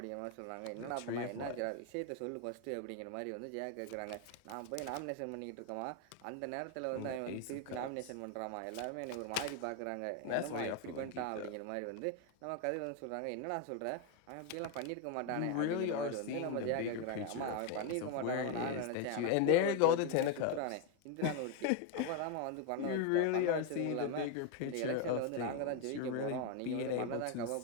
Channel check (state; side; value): different; both; correlation 0.01